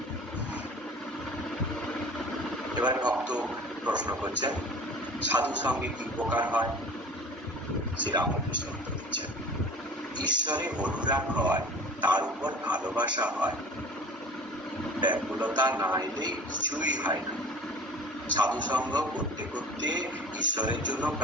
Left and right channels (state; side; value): normal; both; correlation 0.42